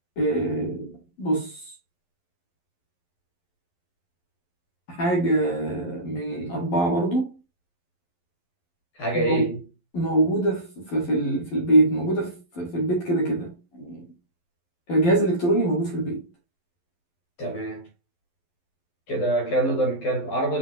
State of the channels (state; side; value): late; right; 11 ms